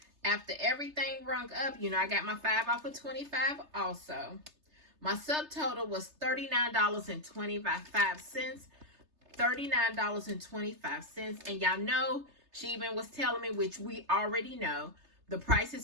after everything rung up, you know, I got my 5 off of 25 also. My subtotal was $39.25. $39.25. And y'all know, she even was telling me, which we already know, the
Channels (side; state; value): left; late; 3.3 ms